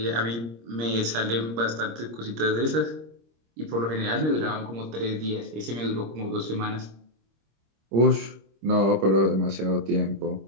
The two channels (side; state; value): left; late; 26 ms